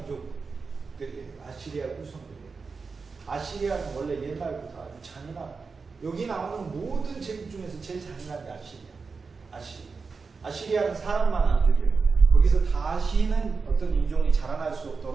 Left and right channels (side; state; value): left; quieter; 4.7 dB